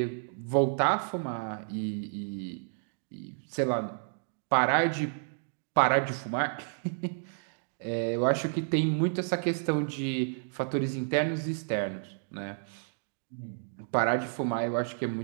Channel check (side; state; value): left; silent; digital silence